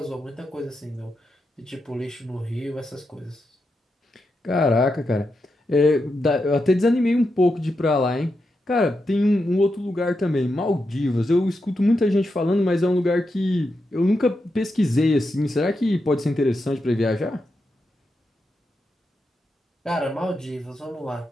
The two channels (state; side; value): normal; both; correlation 0.86